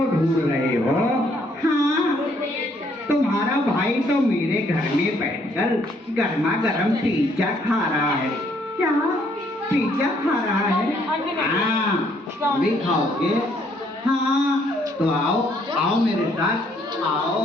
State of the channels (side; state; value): both; normal; correlation 0.67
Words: ढूंढ रहे हो? हाँ। तुम्हारा भाई तो मेरे घर में बैठकर गर्मा गर्म पिज्जा खा रहा है। क्या? पिज्जा खा रहा है? हाँ, भी खाओगे? हाँ। तो आओ आओ मेरे साथ,